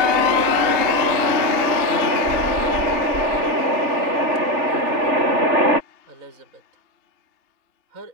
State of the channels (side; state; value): left; late; 2.8 ms